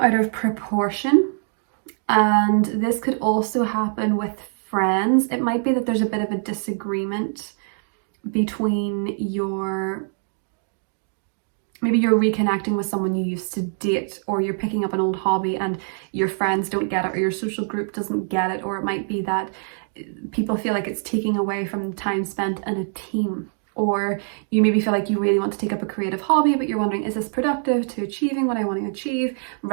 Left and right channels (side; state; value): left; silent; 61 dB below the other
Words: of proportion, and this could also happen with friends. It might be that there's a bit of a disagreement between maybe you're reconnecting with someone you used to date, or you're picking up an old hobby and your friends don't get it, or your social group doesn't get it, or it might be that people feel like it's taking away from the time spent in a team. Or you maybe feel like you really want to take up a creative hobby, but you're wondering, is this productive to achieving what I want to achieve,